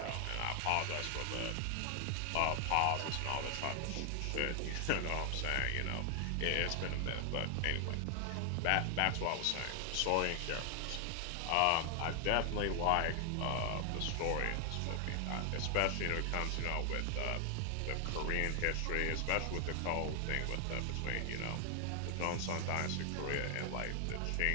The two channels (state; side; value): different; both; correlation 0.00